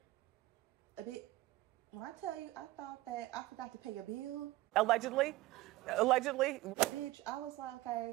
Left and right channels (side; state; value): left; quieter; 18.0 dB